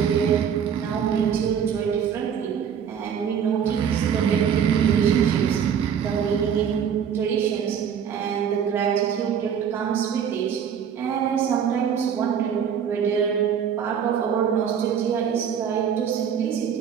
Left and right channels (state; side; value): quieter; left; 8.0 dB